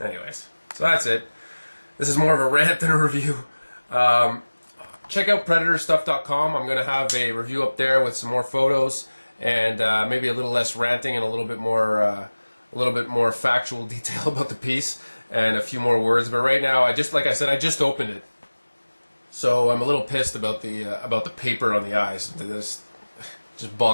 Anyways, so that's it. This is more of a rant than a review. Check out PredatorStuff.com. I'm going to have a review up there with some more photos and maybe a little less ranting and a little bit more factual detail about the piece and a few more words. But right now, like I said, I just opened it, so I'm a little pissed about the paper on the eyes. This just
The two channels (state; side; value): inverted; both; correlation -1.00